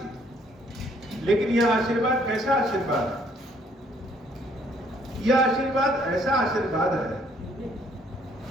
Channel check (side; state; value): both; normal; correlation 0.64